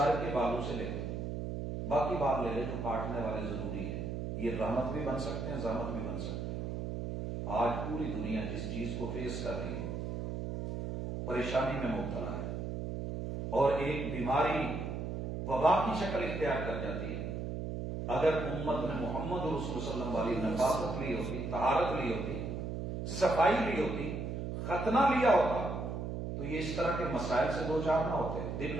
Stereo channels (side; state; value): right; noise; hum, 4 dB below the sound